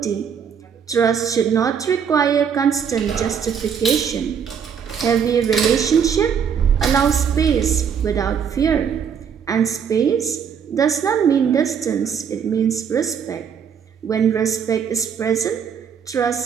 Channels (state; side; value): quieter; left; 7.3 dB